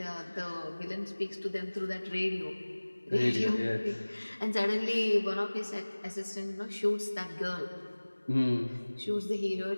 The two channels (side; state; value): both; inverted; correlation -1.00